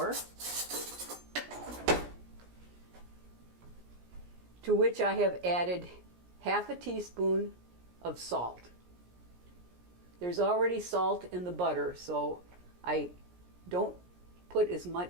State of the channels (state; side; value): late; left; 17 ms